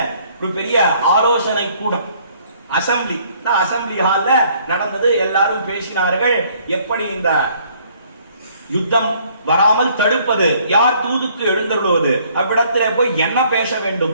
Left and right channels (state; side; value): inverted; both; correlation -0.62